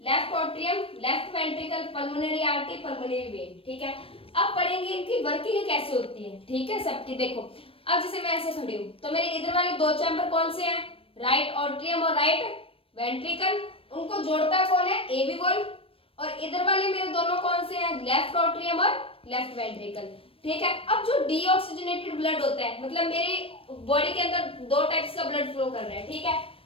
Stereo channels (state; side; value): late; right; 0.27 ms